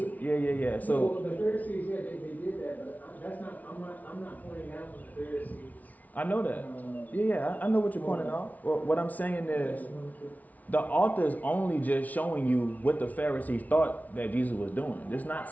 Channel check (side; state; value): right; late; 0.074 ms